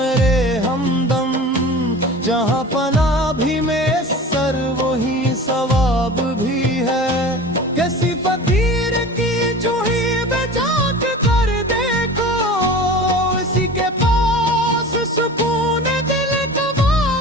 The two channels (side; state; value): both; normal; correlation 0.37